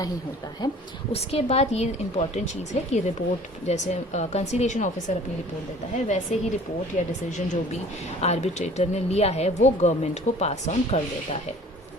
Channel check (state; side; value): normal; both; correlation 0.48